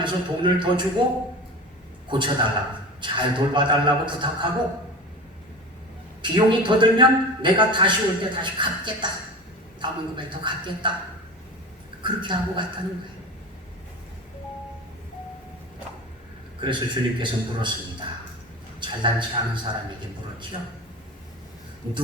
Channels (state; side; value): normal; both; correlation 0.31